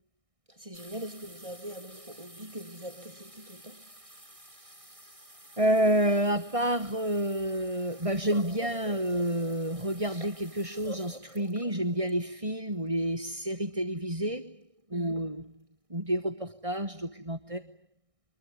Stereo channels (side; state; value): left; late; 1.6 ms